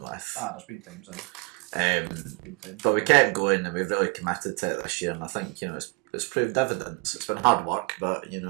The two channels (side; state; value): left; quieter; 29.0 dB